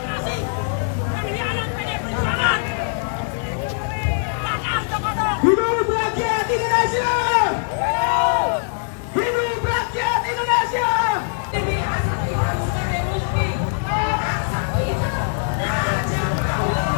Hidup rakyat Indonesia! Hidup rakyat Indonesia! Ini asal kita sebagai bukti. Asal kita Raja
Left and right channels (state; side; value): silent; right; digital silence